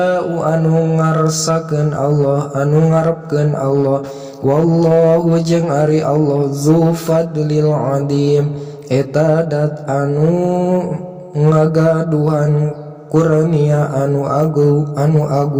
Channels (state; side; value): identical; both; correlation 1.00